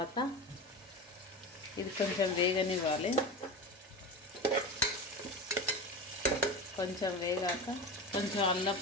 ఇది కొంచెం వేగనివ్వాలి. కొంచెం వేగాక కొంచెం అల్లం,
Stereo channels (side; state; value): both; normal; correlation 0.26